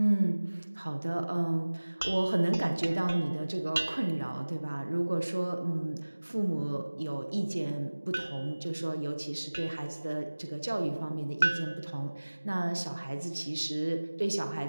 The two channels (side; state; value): both; inverted; correlation -1.00